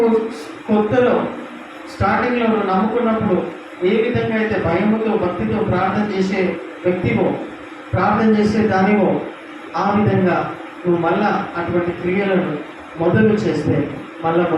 కొత్తలో స్టార్టింగ్లో నువ్వు నమ్ముకున్నప్పుడు ఏ విధంగా అయితే భయముతో భక్తితో ప్రార్థన చేసే వ్యక్తివో, ప్రార్థన చేసే దానివో, ఆ విధంగా నువ్వు మళ్ళా అటువంటి క్రియలను మొదలు చేస్తే మళ్ళా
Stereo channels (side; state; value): both; identical; correlation 1.00